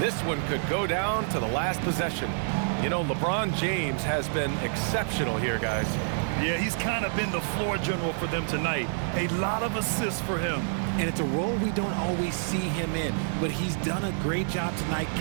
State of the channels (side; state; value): left; silent; digital silence